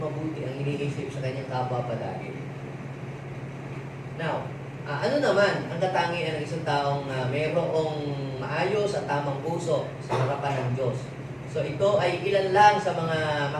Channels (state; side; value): identical; both; correlation 1.00